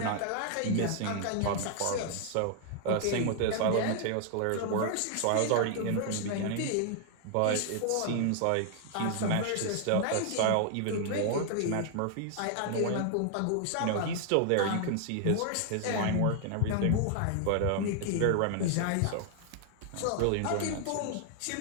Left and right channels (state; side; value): different; both; correlation 0.00